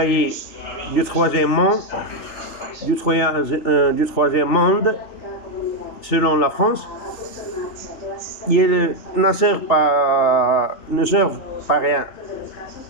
du troisième monde, selon la France, ils ne servent pas rien.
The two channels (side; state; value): right; late; 3.4 ms